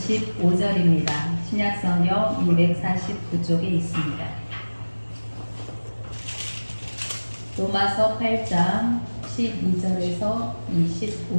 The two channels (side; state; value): both; inverted; correlation -1.00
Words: 15절입니다. 신약성경 249쪽에 있습니다. 로마서 8장 12절에서